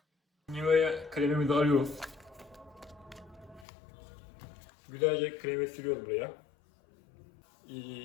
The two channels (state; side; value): drops out; right; at 3.7 s